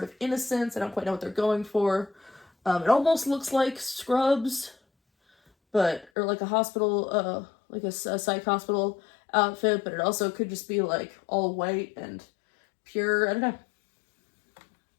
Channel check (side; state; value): right; drops out; at 6.1 s